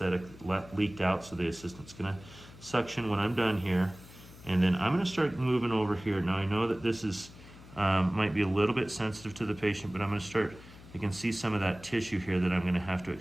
leaked out, so the assistant's going to suction when I'm done here. And then I'm going to start moving over here. Now I know that this is might be a little bit sensitive to the patient, but I'm going to start, I can see some of that tissue here that I'm going to have to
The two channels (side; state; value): left; noise; hum, 19 dB below the sound